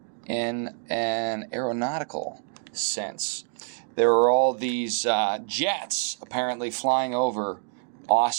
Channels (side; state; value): left; silent; 61 dB below the other